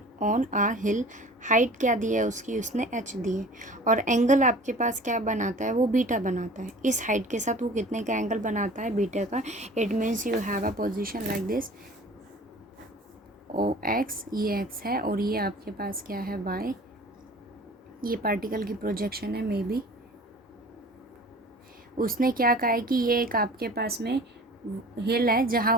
on a hill, height क्या दी है उसकी, उसने h दी है, और एंगल आपके पास क्या बनाता है, वो बीटा बनाता है। इस हाइट के साथ वो कितने का एंगल बनाता है, बीटा का। It means you have a position like this, O X, ये x है और ये आपके पास क्या है, y। ये पार्टिकल की प्रोजेक्शन है, मे बी। उसने क्या कहा है कि ये एक आपके पास में हिल है जहाँ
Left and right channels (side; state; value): both; normal; correlation 0.44